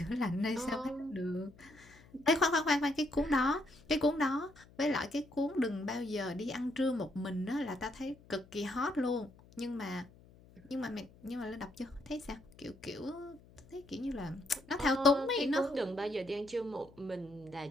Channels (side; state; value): left; noise; hum, 24 dB below the sound